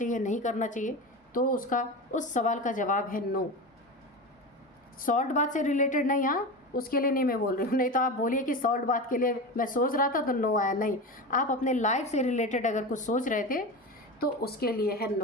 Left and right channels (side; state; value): both; normal; correlation 0.25